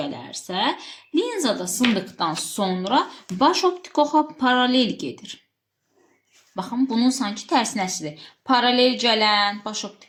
linzada sındıqdan sonra baş optik oxa paralel gedir. Baxın, bunun sanki tərsinəsidir. Paralel gələn baş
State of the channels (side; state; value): both; identical; correlation 1.00